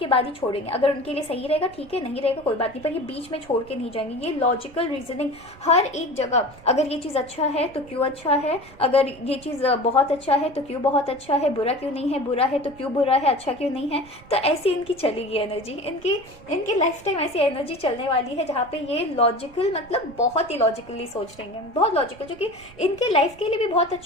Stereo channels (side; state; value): right; noise; rumble, 22 dB below the sound